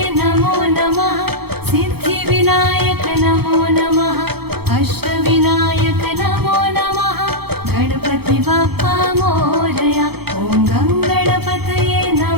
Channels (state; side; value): late; left; 0.96 ms